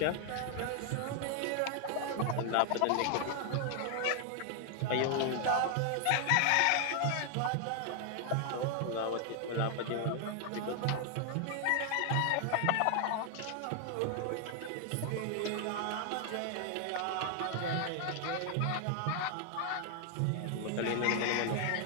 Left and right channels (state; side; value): different; both; correlation 0.00